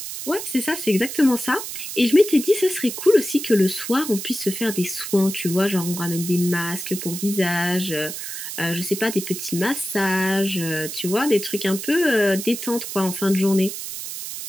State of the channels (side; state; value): right; noise; hiss, 7 dB below the sound